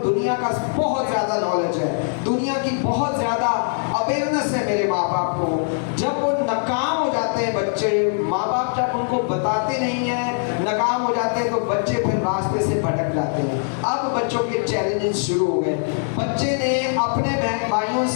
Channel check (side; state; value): right; silent; 61 dB below the other